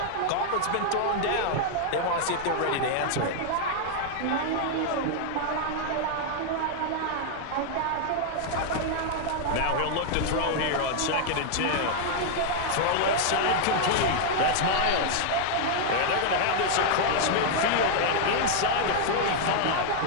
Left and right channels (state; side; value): different; both; correlation -0.01